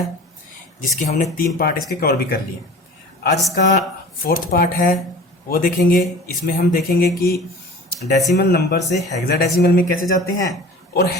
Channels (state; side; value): normal; both; correlation 0.40